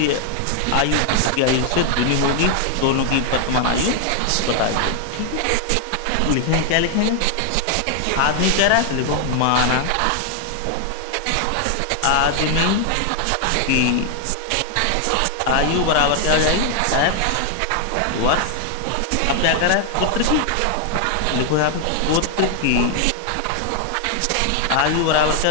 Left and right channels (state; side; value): different; both; correlation 0.00